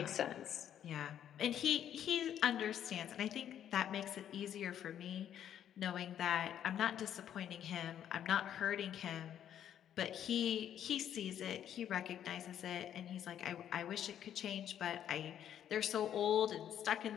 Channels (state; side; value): quieter; right; 10.1 dB